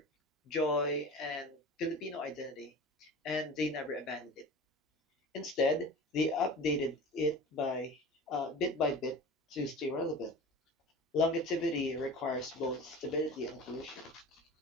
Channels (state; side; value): normal; both; correlation 0.36